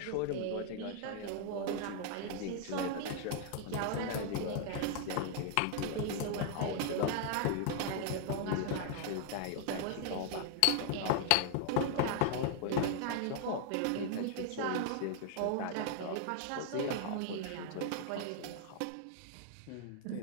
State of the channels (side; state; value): both; different; correlation 0.00